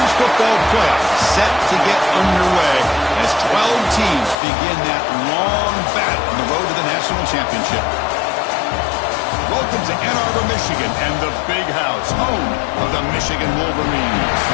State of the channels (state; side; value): drops out; right; at 4.4 s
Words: football playoff set to get underway as 12 teams begin that long battle on the road to the national championship. Welcome to Ann Arbor, Michigan, and the Big House, home of the Michigan Wolverines.